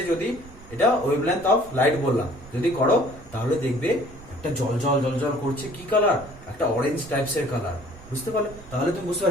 যদি এটা ওয়েভলেন্থ অফ লাইট বললাম, যদি করো তাহলে দেখবে একটা জল জল জল জল করছে, কি কালার, একটা অরেঞ্জ টাইপস এর কালার। বুঝতে পারলে, তাহলে তুমি বুঝতে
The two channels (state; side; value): noise; right; rumble, 19 dB below the sound